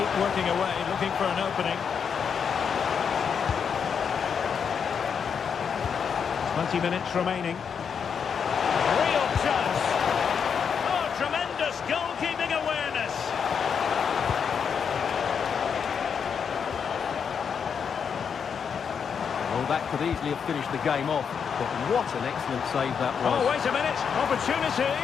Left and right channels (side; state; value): right; quieter; 6.8 dB